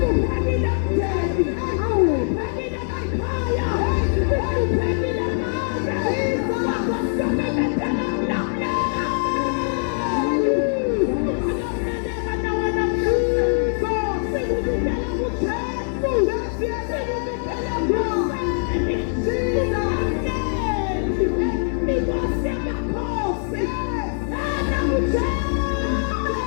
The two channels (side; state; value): right; silent; digital silence